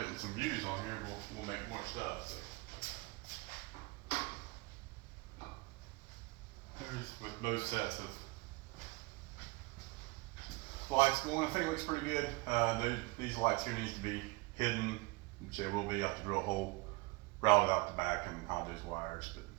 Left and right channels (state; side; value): quieter; left; 25.6 dB